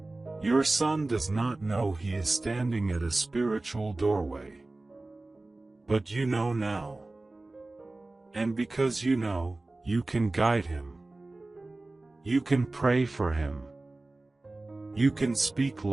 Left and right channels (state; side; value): quieter; left; 3.0 dB